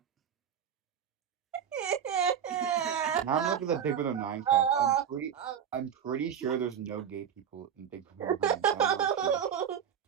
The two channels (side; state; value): left; quieter; 8.4 dB